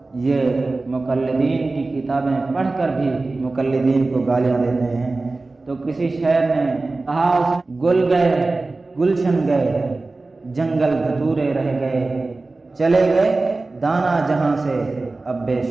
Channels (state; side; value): quieter; left; 3.4 dB